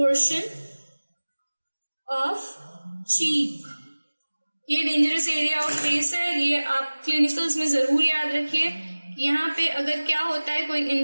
of cheek। ये डेंजरस एरिया ऑफ फेस है। ये आप क्लिनिकल्स में जरूर याद रखिए। यहाँ पे अगर क्या होता है, कोई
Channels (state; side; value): inverted; both; correlation -1.00